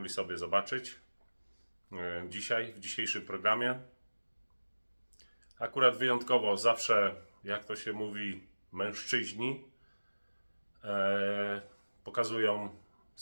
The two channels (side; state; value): both; inverted; correlation -1.00